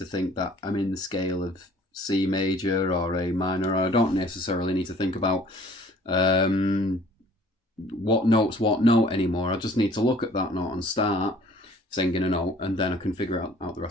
think that I'm in the scale of C major or A minor. I don't necessarily need to think about what note's what note anymore. I just need to look at that note and start singing a note, and then I can figure out the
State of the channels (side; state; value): both; normal; correlation 0.53